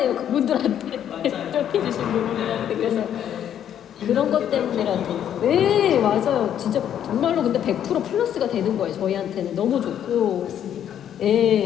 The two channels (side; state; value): right; quieter; 9.9 dB